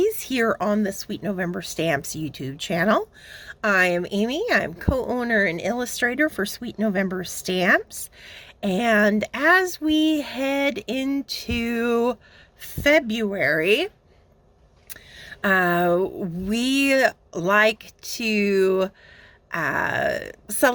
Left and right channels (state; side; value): identical; both; correlation 1.00